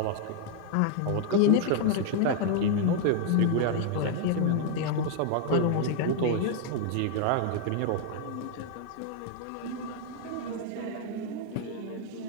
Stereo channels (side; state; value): both; different; correlation 0.00